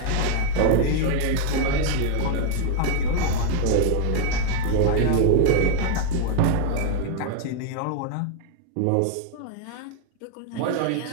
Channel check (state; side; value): different; both; correlation 0.01